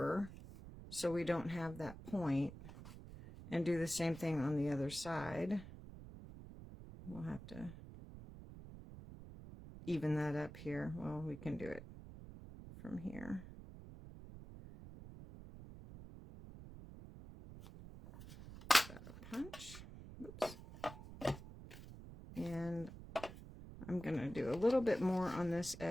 so we don't have that point, and do the same thing on the other side. We'll have to even that up here. Well, we can do it from here. That a punch. Whoops. And I'm going to do a little bit more on this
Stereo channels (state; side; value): noise; right; rumble, 13 dB below the sound